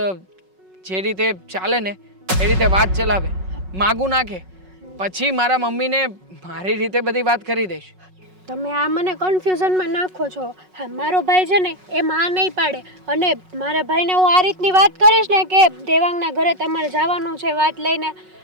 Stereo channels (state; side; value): late; left; 5.4 ms